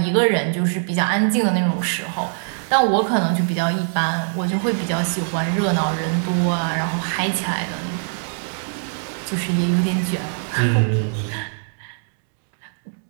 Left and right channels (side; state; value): left; silent; digital silence